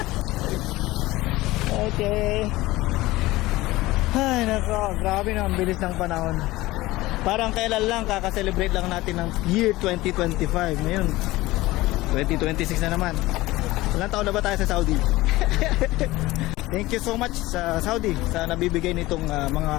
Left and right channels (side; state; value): right; quieter; 18.8 dB